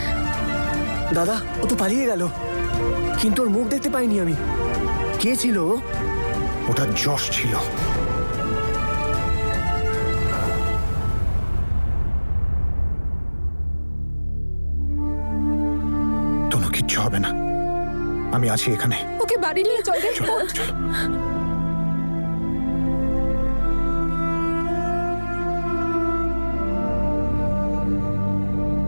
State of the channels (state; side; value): inverted; both; correlation -1.00